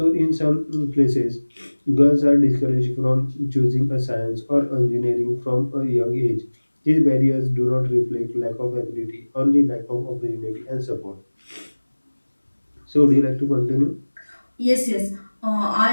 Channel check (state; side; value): inverted; both; correlation -1.00